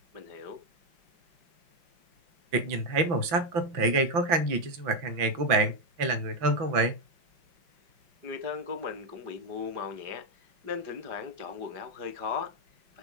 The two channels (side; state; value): left; late; 5.9 ms